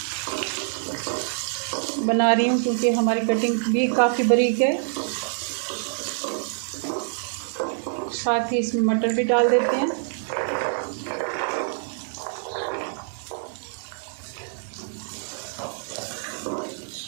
बना रही हूँ, क्योंकि हमारी कटिंग भी काफ़ी बारीक है। साथ ही इसमें मटर भी डाल देते हैं।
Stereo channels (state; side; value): silent; left; 59 dB below the other